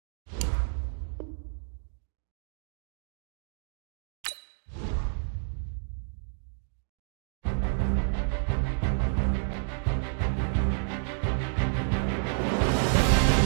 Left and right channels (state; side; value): silent; left; digital silence